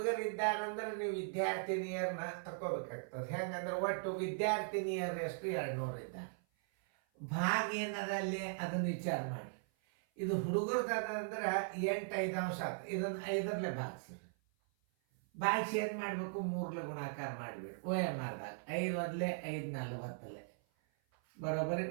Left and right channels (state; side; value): silent; left; 52 dB below the other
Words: ನೀವು ವಿದ್ಯಾರ್ಥಿನಿಯರನ್ನ ತಗೋಬೇಕಾಗ್ತದೆ. ಹೆಂಗಂದ್ರೆ ಒಟ್ಟು ವಿದ್ಯಾರ್ಥಿನಿಯರು ಎಷ್ಟು? 200 ಇದ್ದಾರೆ. ಭಾಗ ಏನದಲ್ಲಿ ಅದನ್ನು ವಿಚಾರ ಮಾಡಿ. ಇದು ಹುಡುಗರದಂದ್ರೆ 8 5 ಆಯ್ತು. ಇದನ್ನು 5ರಲ್ಲೇ ಭಾಗಿಸ್ರಿ. ಭಾಗಿಸಿ ಏನು ಮಾಡಬೇಕು? 3 ಗುಣಾಕಾರ ಮಾಡಿಬಿಡಿ. OMRದಾಗ 5 1 5 40 ಬರೋಬ್ಬರಿ